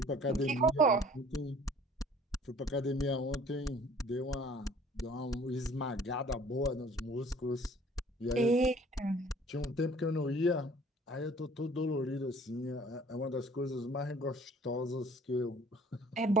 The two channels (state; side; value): normal; both; correlation 0.52